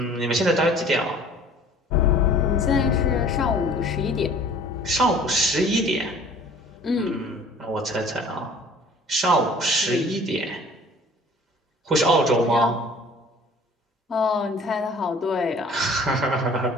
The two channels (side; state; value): both; normal; correlation 0.50